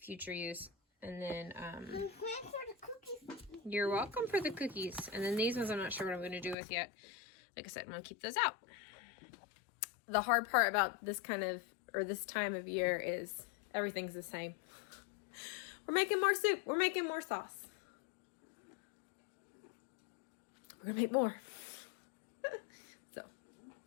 use. And then you're welcome for the cookies. And then these ones I'm not sure what I'm going to do with yet. Like I said, I'm going to keep those out. The hard part about this this time of year is everything's the same. We're making more soup. We're making more sauce. we're gonna make more. So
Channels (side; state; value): right; drops out; at 6.6 s